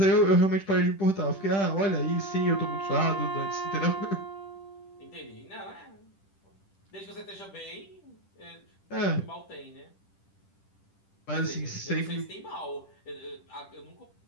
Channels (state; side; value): late; right; 10 ms